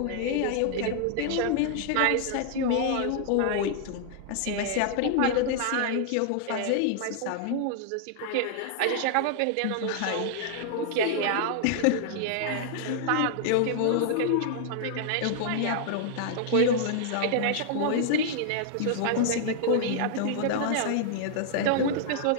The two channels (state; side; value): different; both; correlation -0.01